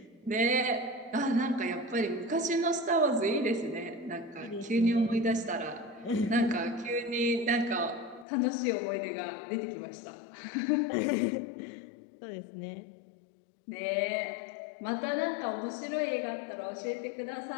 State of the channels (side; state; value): right; drops out; at 8.2 s